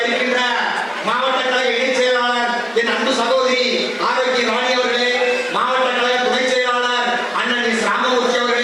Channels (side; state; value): both; identical; correlation 1.00